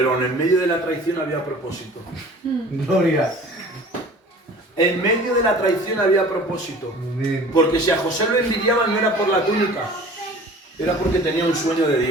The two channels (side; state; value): both; normal; correlation 0.45